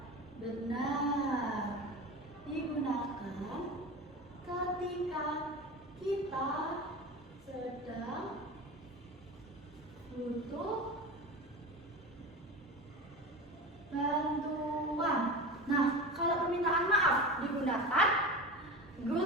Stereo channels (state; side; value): normal; both; correlation 0.29